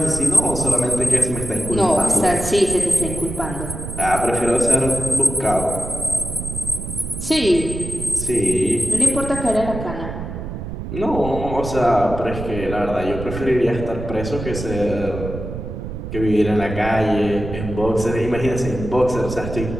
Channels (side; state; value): right; noise; rumble, 7 dB below the sound